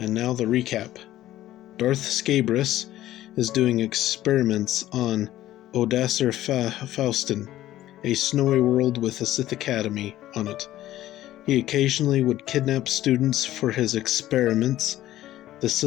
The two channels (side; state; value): right; quieter; 14.1 dB